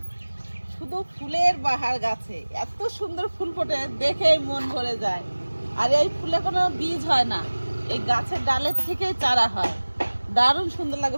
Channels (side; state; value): both; inverted; correlation -1.00